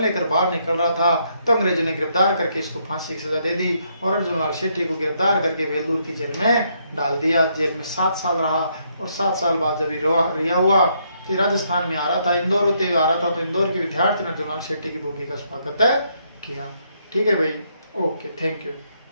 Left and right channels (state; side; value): inverted; both; correlation -0.74